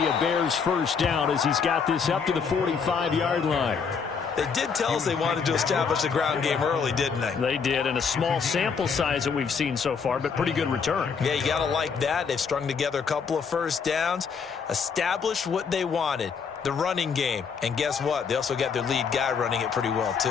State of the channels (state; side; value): quieter; right; 6.0 dB